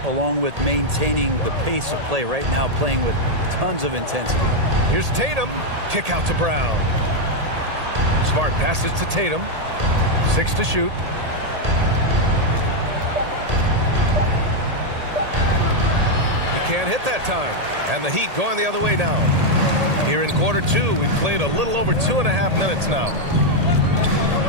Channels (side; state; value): left; late; 1.8 ms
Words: along with maintaining the pace of play right now, playing with tons of intensity. Here's Tatum. Kick out to Brown. Smart passes to Tatum. 6 to shoot. He can't hit that time. And the Heat going the other way now. Here in quarter 2, we've played a little over 2.5 minutes now.